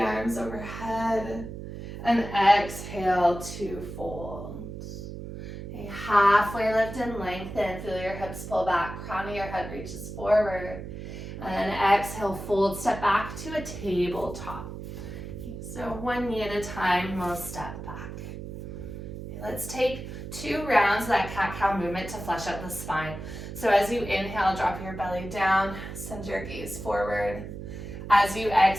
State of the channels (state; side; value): noise; right; hum, 9 dB below the sound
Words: overhead, and exhale to fold. Okay, halfway lift and lengthen, feel your hips pull back, crown of your head reaches forward. And then exhale, fold, step back to a tabletop. So one knee at a time, we'll step back. Okay, let's take 2 rounds of that cat-cow movement to flesh out the spine. So as you inhale, drop your belly down, send your gaze forward. As you